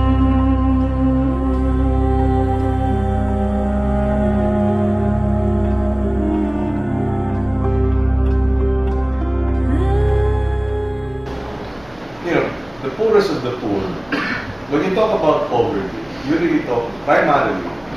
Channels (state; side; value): noise; right; hum, 29 dB below the sound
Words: poorest of the poor, when you talk about poverty, you really talk, primarily,